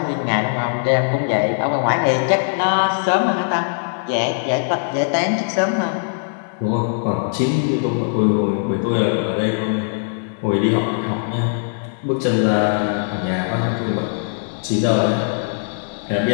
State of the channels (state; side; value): silent; right; digital silence